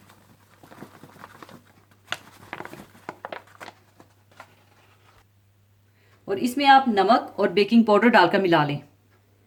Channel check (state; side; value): identical; both; correlation 1.00